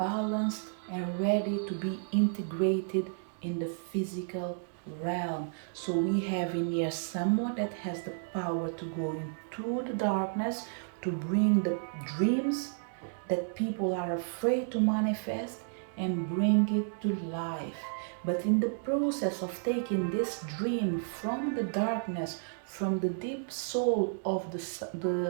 and ready to be integrated in the physical realm. So we have in here someone that has the power to go into the darkness to bring the dreams that people are afraid to manifest and bring it to life. But in the process of taking this dream from the darkness, from the deep soul of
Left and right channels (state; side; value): silent; left; digital silence